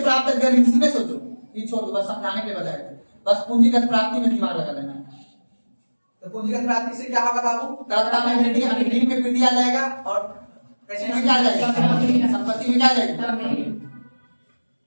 अगर ऋण सीधे सोचो, ये छोड़ दो, बस समझाने के बजाय बस पूंजीगत प्राप्ति में दिमाग लगा लेना है। तो पूंजीगत प्राप्ति से क्या होगा बाबू? तरलता में वृद्धि, यानी ऋण में वृद्धि आ जाएगा, और पैसे में क्या आ जाएगा? संपत्ति में क्या आ जाएगी?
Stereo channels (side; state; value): both; inverted; correlation -1.00